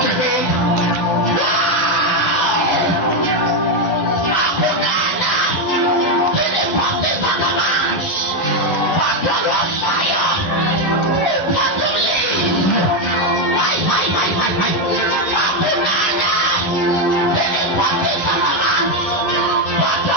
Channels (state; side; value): late; right; 11 ms